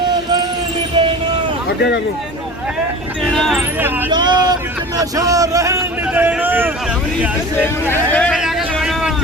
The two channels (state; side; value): normal; both; correlation 0.37